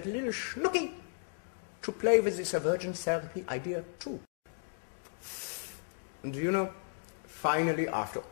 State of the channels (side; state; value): right; silent; digital silence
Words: little schnooky to play with this aversion therapy idea too. And finally, after